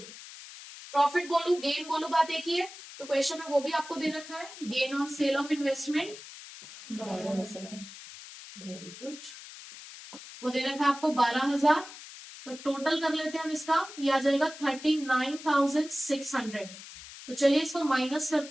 Profit बोलू गेन बोलू बात एक ही है, तो क्वेश्चन में वो भी आपको दे रखा है, gain on sale of investment. Very good. वो दे रखा है आपको 12,000। तो टोटल कर लेते हैं हम इसका, ये आ जाएगा 39,600। तो चलिए इसको माइनस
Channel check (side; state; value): left; noise; hiss, 15 dB below the sound